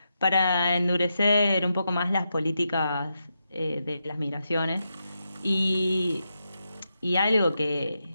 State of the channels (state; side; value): inverted; both; correlation -0.86